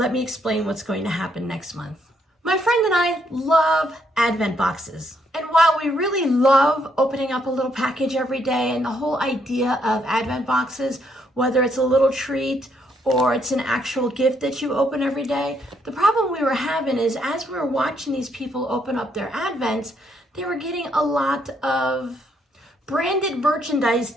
me explain what's going to happen next month. My friend and I love Advent boxes. And while we really love opening up a little package every day and the whole idea of Advent boxes, whether it's a little treat or it's an actual gift that you open every day, the problem we were having is as we were watching these people open up their Advents, they were getting a lot of branded merchandise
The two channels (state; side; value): normal; both; correlation 0.73